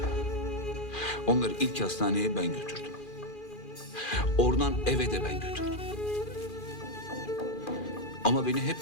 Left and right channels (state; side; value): late; right; 2.4 ms